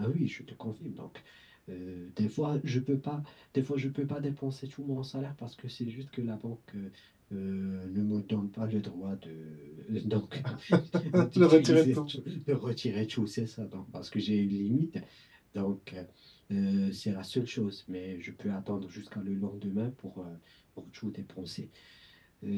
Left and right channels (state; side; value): identical; both; correlation 1.00